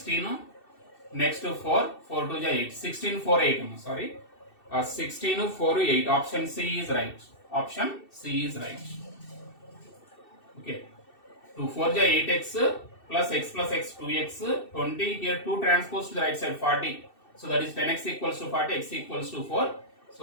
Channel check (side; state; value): right; late; 2.7 ms